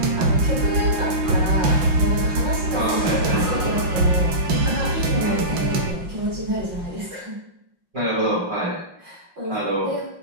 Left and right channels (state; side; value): late; left; 5.6 ms